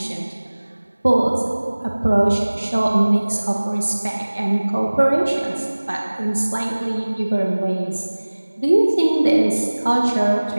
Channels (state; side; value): inverted; both; correlation -1.00